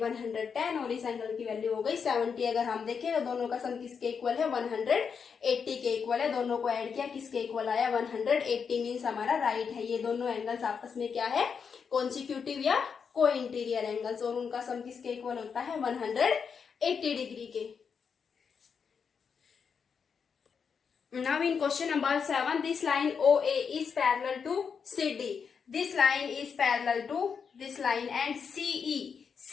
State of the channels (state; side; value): quieter; right; 6.3 dB